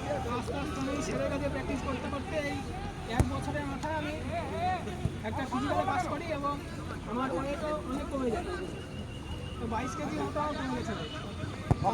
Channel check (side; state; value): both; identical; correlation 1.00